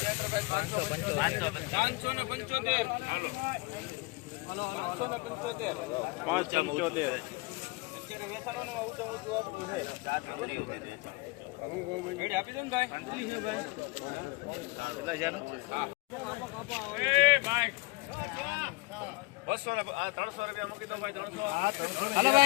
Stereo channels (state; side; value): quieter; right; 24.6 dB